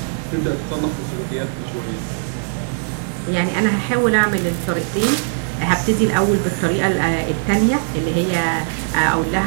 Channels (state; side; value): silent; left; 66 dB below the other